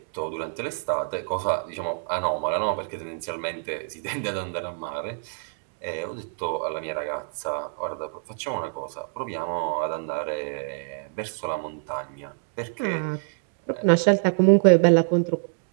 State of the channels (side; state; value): left; silent; digital silence